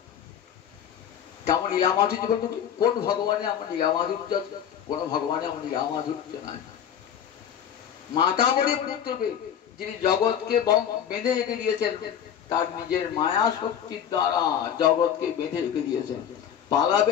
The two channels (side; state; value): right; quieter; 9.1 dB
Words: কেমন লীলা মাধুর্য বলতো, কোন ভগবানে আমার লীলা মাধুর্য আছে? কোন ভগবানে আমার লীলা মাধুর্য নাই। মাতামরি পুত্রকে যিনি জগৎকে বেঁধে রেখে দিয়েছেন, তার নিজের মায়া শক্তির দ্বারা জগৎকে বেঁধে রেখে দিয়েছেন।